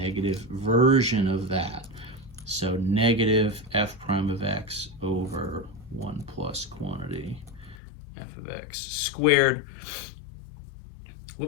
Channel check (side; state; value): right; drops out; at 7.8 s